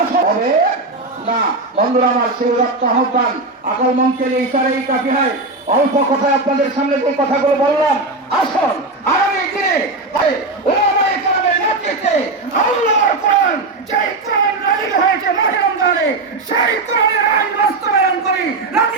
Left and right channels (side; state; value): left; quieter; 3.2 dB